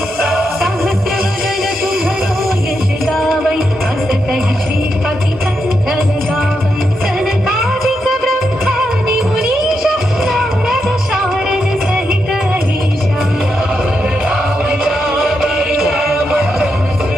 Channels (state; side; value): normal; both; correlation 0.83